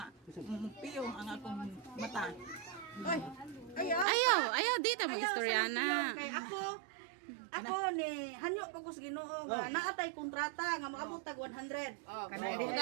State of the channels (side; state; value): left; drops out; at 4.0 s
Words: piyong ang akong mata. Ayaw, dito mag-istoryana. Kay ako ni hanyo ko sa Ginoo nga naatay kontrata nga maabot tag 100.